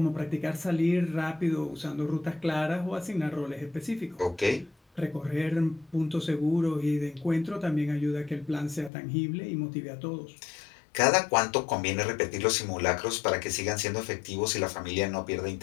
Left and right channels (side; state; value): right; drops out; at 8.9 s